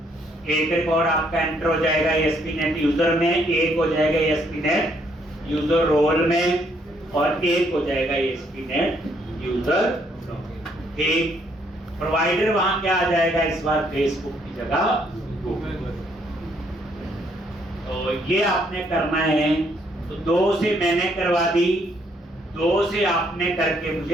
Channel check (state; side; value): normal; both; correlation 0.70